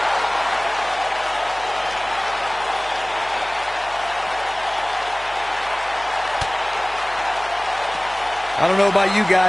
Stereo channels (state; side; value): noise; left; hum, 21 dB below the sound